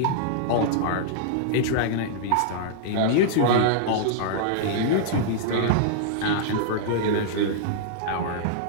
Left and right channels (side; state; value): both; different; correlation -0.01